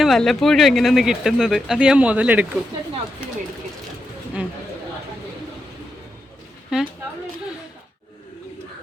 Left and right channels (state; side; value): normal; both; correlation 0.86